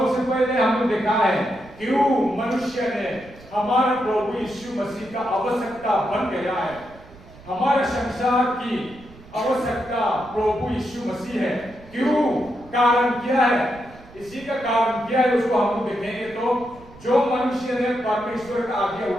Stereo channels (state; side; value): noise; right; rumble, 21 dB below the sound